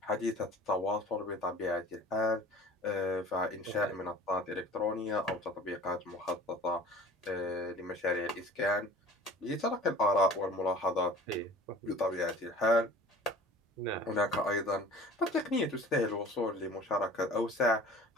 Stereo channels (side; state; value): both; normal; correlation 0.44